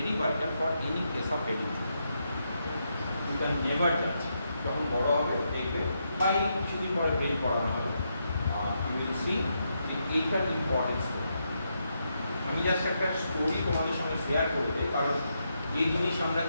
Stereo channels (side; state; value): both; inverted; correlation -0.82